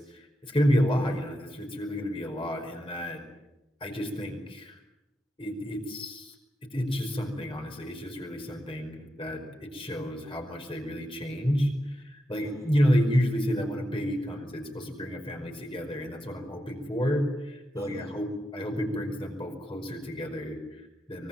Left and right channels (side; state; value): both; normal; correlation 0.86